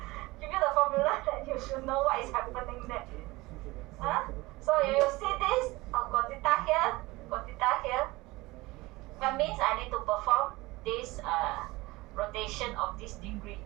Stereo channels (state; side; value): quieter; left; 21.2 dB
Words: Give you the formula that you should know what is happening there. Huh? So you see this, got theta here, got theta here. That means I need to perform this rotation of this degree.